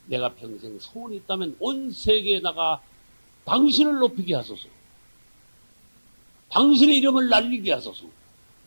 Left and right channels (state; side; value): inverted; both; correlation -1.00